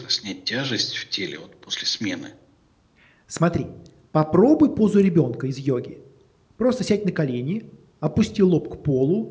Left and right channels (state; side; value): identical; both; correlation 1.00